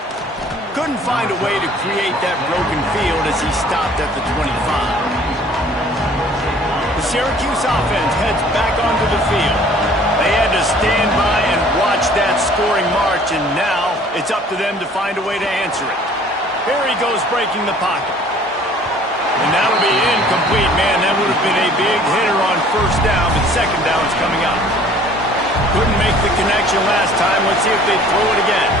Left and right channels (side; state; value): both; normal; correlation 0.53